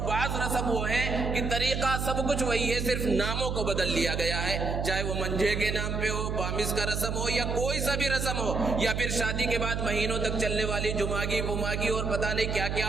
بعض رسم وہ ہیں کہ طریقہ سب کچھ وہی ہے، صرف ناموں کو بدل لیا گیا ہے، چاہے وہ منجھے کے نام پہ ہو، پامس کا رسم ہو، یا کوئی سا بھی رسم ہو، یا پھر شادی کے بعد مہینوں تک چلنے والی جماگی پماگی اور پتہ نہیں کیا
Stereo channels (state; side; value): noise; right; hum, 2 dB below the sound